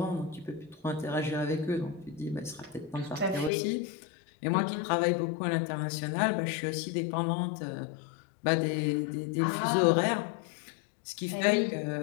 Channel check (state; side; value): drops out; right; at 3.5 s